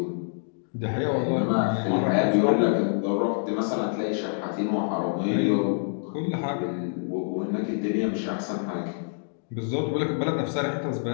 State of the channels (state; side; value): silent; right; digital silence